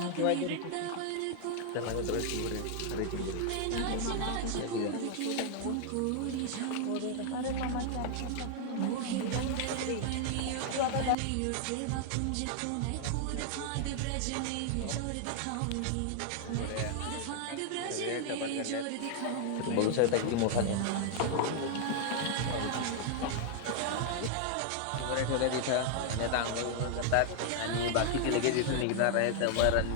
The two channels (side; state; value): both; different; correlation 0.00